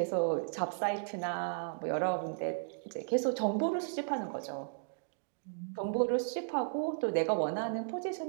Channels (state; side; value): silent; left; digital silence